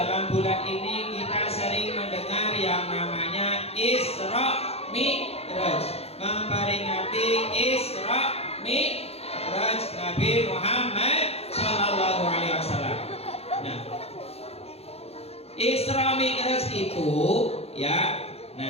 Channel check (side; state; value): right; late; 0.29 ms